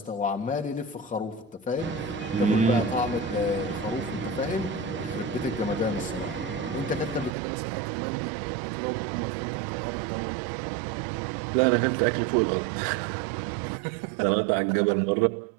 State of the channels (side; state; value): left; drops out; at 7.4 s